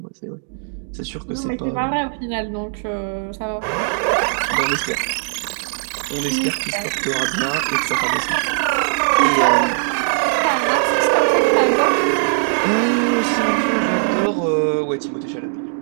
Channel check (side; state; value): left; silent; digital silence